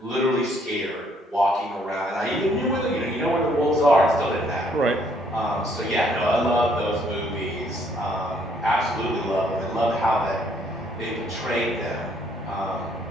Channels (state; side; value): normal; both; correlation 0.67